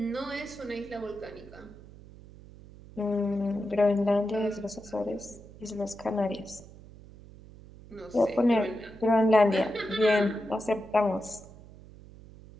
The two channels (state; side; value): noise; right; hum, 19 dB below the sound